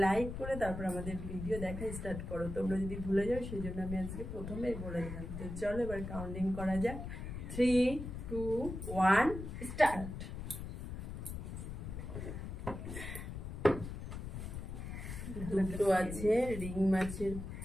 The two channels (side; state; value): left; noise; rumble, 7 dB below the sound